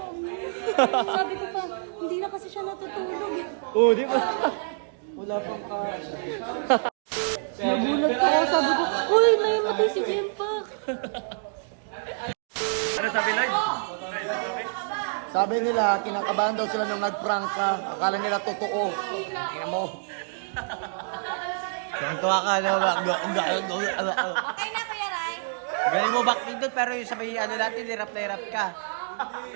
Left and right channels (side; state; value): left; silent; digital silence